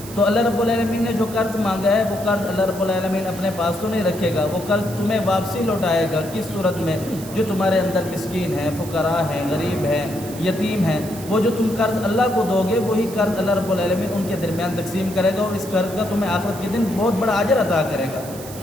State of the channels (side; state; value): right; noise; hiss, 15 dB below the sound